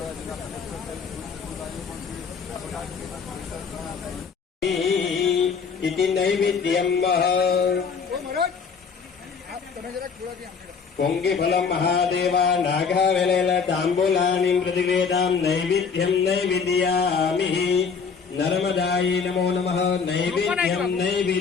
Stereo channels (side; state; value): right; quieter; 5.8 dB